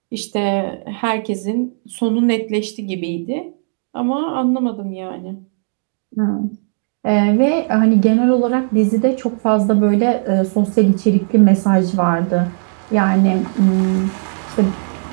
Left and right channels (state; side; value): silent; left; 59 dB below the other